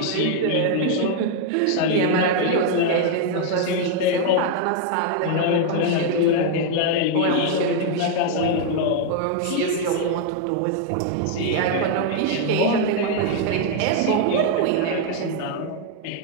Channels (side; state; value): both; different; correlation 0.00